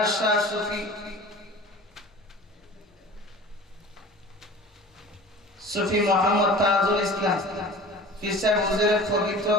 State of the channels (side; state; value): both; normal; correlation 0.40